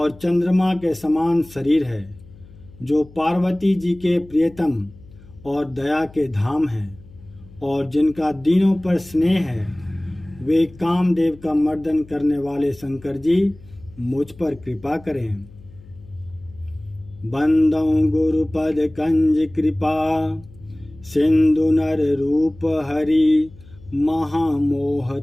चंद्रमा के समान शरीर है, जो पार्वती जी के प्रियतम और दया के धाम हैं और जिनका दीनों पर स्नेह है, वे कामदेव का मर्दन करने वाले शंकर जी मुझ पर कृपा करें। बंदौ गुरुपद कंज कृपा सिंधु नर रूप हरि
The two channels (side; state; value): left; noise; hum, 22 dB below the sound